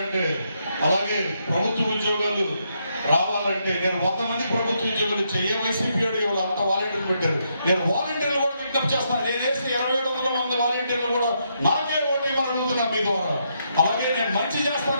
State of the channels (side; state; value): both; inverted; correlation -0.78